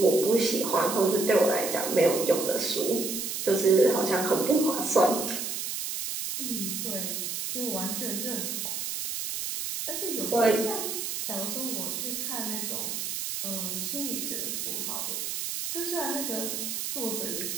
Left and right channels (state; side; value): noise; right; hiss, 3 dB below the sound